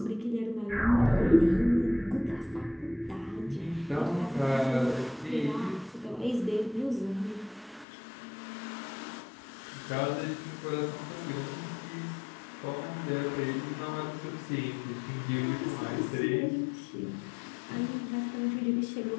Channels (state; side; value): drops out; right; at 7.9 s